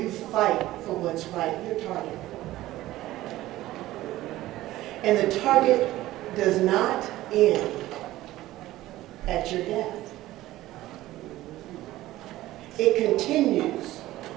fight for what's right, you're targeted. And the target does not end at your death. It continues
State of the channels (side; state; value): left; quieter; 16.0 dB